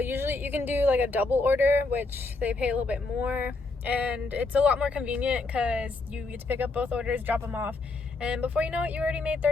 you can do like a double order, which they pay a little bit more, and it's a lot more convenient because you get to pick up both orders, drop them off, and before you know it, you already made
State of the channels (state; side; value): quieter; right; 3.5 dB